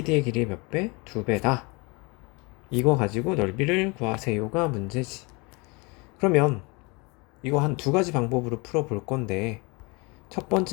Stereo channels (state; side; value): quieter; right; 28.2 dB